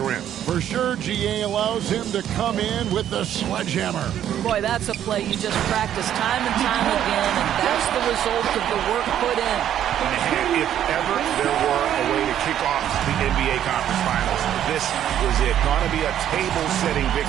rim. For sure, GA allows him to come in with the sledgehammer. Boy, that's a play you just practice time and time again, and that's the result of the work put in. And if ever there were a way to kick off the NBA Conference Finals, this was it. Going to be a table-setting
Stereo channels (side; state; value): left; quieter; 10.7 dB